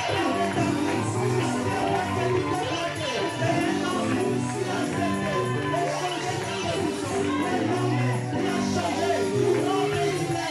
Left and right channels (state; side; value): identical; both; correlation 1.00